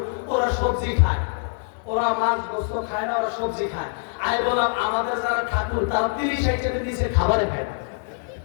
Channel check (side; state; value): right; silent; digital silence